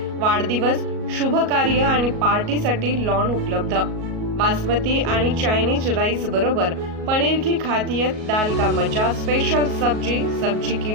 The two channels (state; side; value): late; left; 37 ms